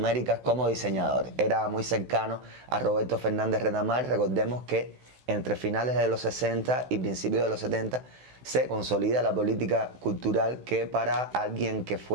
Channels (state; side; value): late; left; 16 ms